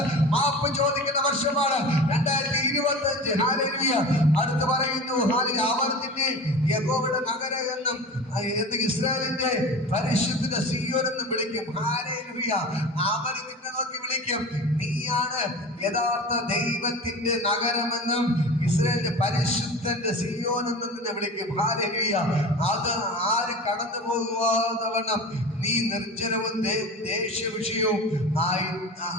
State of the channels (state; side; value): normal; both; correlation 0.34